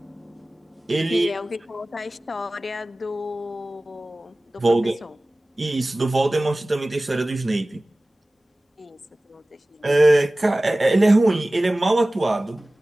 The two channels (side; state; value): both; normal; correlation 0.98